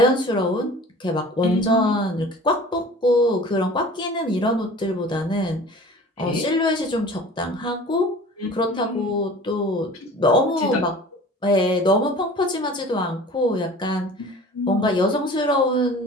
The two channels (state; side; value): normal; both; correlation 0.43